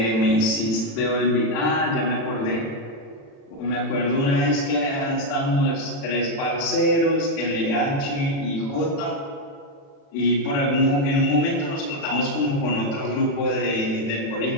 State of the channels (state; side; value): late; right; 36 ms